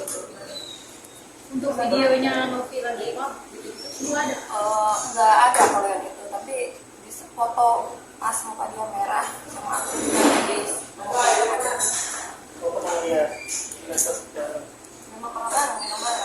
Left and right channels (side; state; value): both; identical; correlation 1.00